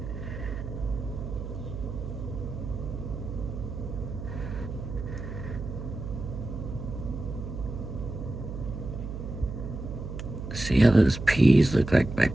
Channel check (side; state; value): right; noise; hum, 7 dB below the sound